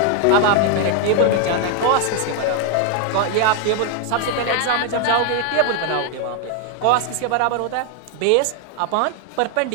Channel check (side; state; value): both; different; correlation 0.00